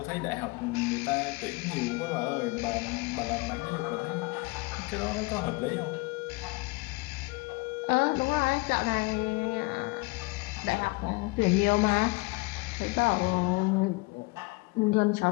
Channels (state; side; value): quieter; right; 25.7 dB